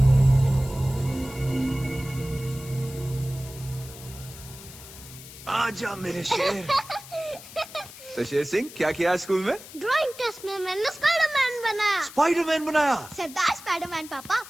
आजा मेरे शेर। तो शेर सिंह, क्या किया स्कूल में? ड्राइंग टेस्ट में मैंने स्पाइडरमैन बनाया। स्पाइडरमैन बनाया। सरदार स्पाइडरमैन पापा।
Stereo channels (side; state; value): left; noise; hiss, 16 dB below the sound